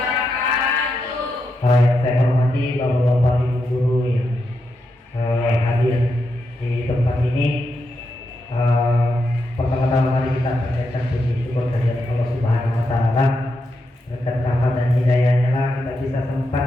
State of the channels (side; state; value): both; normal; correlation 0.84